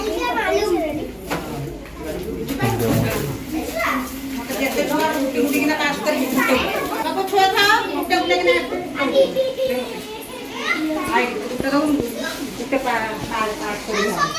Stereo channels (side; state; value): both; identical; correlation 1.00